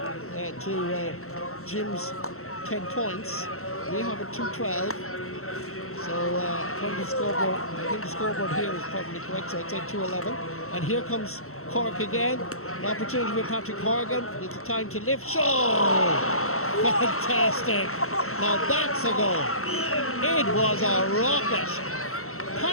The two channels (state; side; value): late; right; 0.63 ms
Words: Jim's 10 points. We have a 2-12. So from the scoreboard, I think the scoreboard here is probably correct, so I'd say 2-11. And here comes Cork again. An opportunity for Patrick Horgan. It's a time to lift. Show! Fantastic! Now that's a goal. It was a rocket.